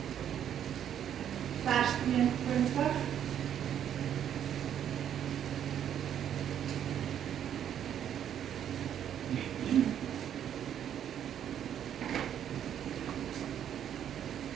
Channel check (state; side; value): quieter; left; 9.7 dB